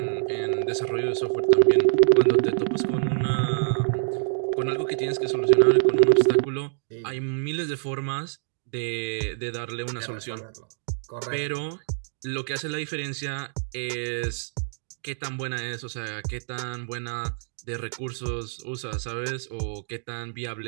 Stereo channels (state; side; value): silent; left; digital silence